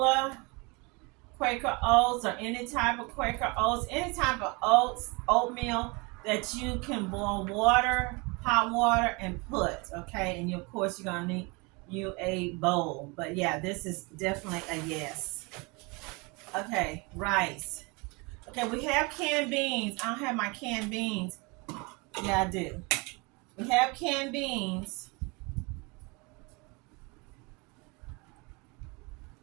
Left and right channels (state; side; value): quieter; left; 28.2 dB